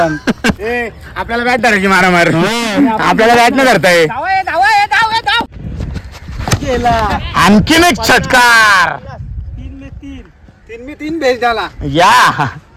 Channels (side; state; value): both; identical; correlation 1.00